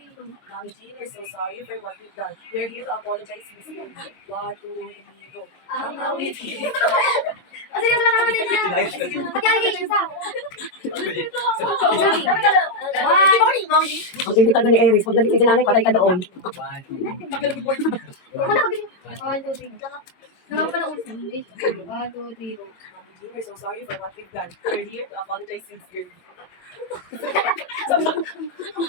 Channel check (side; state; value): right; late; 22 ms